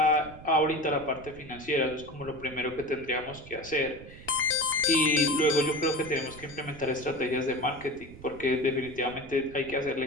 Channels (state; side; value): noise; right; rumble, 17 dB below the sound